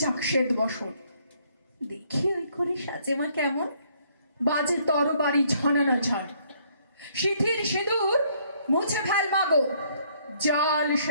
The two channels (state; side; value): inverted; both; correlation -0.66